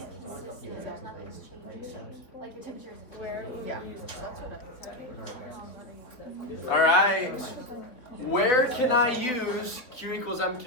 consistently, there's nothing's changing. Like the temperature is where, yeah. All right. Where can I use Q equals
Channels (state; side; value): late; right; 3.7 ms